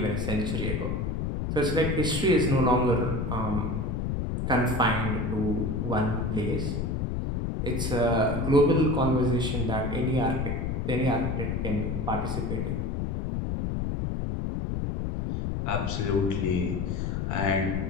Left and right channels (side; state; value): left; noise; rumble, 1 dB below the sound